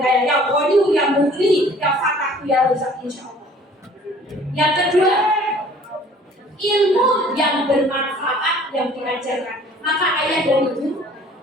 kaya, yang Ghani, yang Mughni, yang Fatah, yang Razak, insya Allah. Yang kedua, ilmu yang bermanfaat yang diajarkan. Maka ayah dan ibu,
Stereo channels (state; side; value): normal; both; correlation 0.53